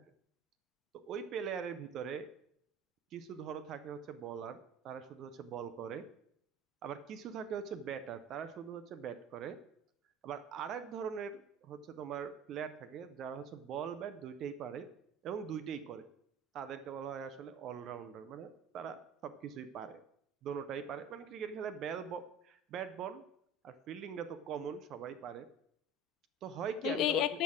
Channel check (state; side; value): normal; both; correlation 0.39